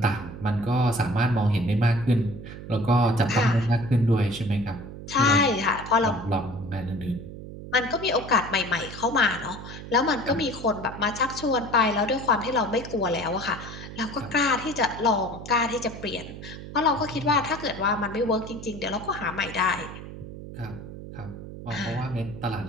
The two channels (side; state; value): right; noise; hum, 12 dB below the sound